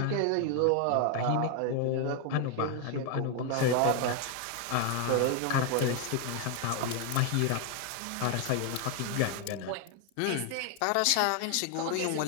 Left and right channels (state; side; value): different; both; correlation 0.01